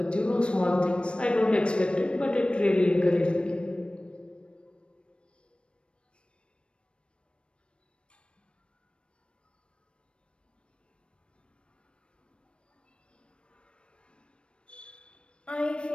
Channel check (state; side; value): late; right; 0.057 ms